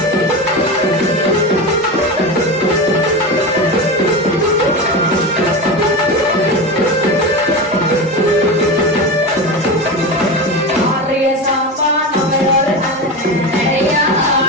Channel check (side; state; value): both; normal; correlation 0.22